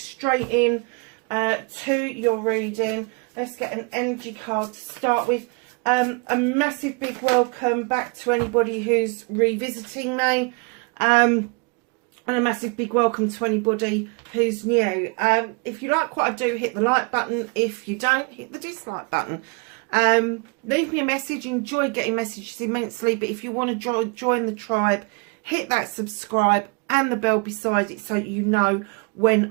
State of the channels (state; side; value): quieter; left; 31.6 dB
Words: in to your reading. Let's get an energy card to start with. A massive big welcome back to anybody who's revisiting me. And a massive big welcome to anybody who's new. If you like what I do, hit the like button. If you don't, hit the dislike button. Leave me a message. Enjoy getting messages immensely. But if you want to join the tribe, hit that subscribe and the bell beside it so you know